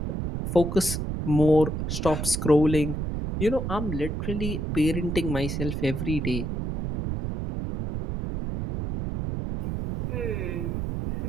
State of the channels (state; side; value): noise; right; rumble, 2 dB below the sound